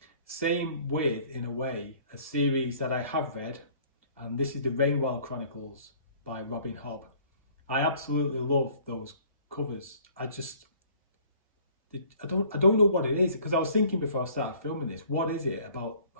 Same with, in a way, a series that I have read, and this is the Rainwell Chronicles by Robin Hobb. I absolutely love those covers. I don't know what it is, because I was thinking before I started filming this, what is it about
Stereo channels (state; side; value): inverted; both; correlation -0.54